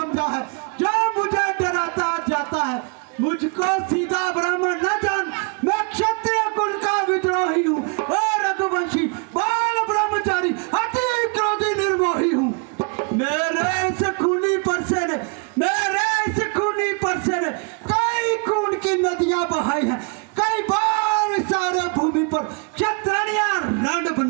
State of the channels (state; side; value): quieter; left; 34.2 dB